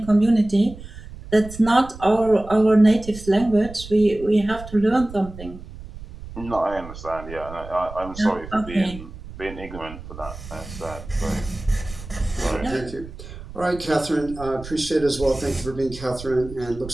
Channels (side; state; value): right; noise; rumble, 14 dB below the sound